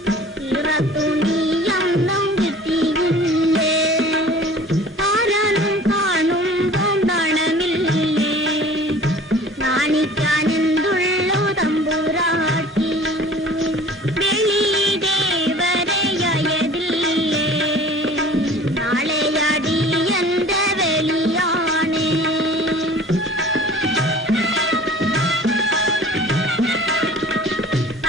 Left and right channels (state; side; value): normal; both; correlation 0.46